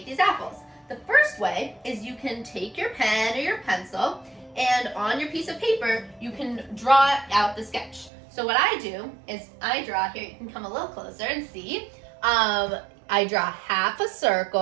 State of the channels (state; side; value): drops out; left; at 8.1 s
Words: these apples. The first way is you can take your pen or your pencil, and on your piece of paper, you can draw out the sketch. So what I do is I draw, here you can come a little closer and see. I draw half a